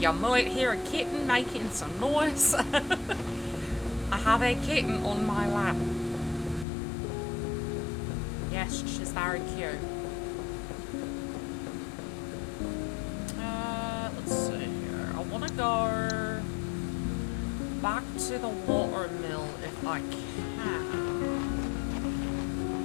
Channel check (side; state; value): right; drops out; at 6.7 s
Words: might hear a kitten making some noise. I have a kitten on my lap. Yes, she's very cute. Let's see here. I want to go back to the watermill if I can.